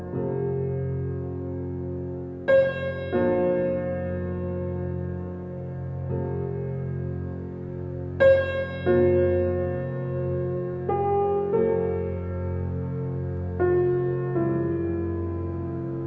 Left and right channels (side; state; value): both; identical; correlation 1.00